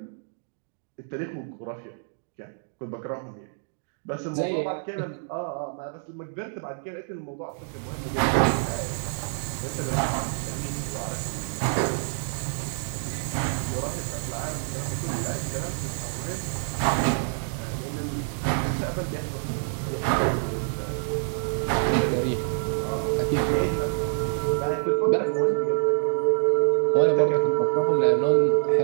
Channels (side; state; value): left; silent; digital silence